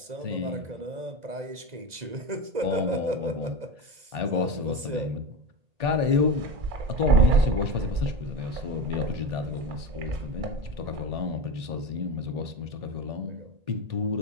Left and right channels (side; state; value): left; late; 2.0 ms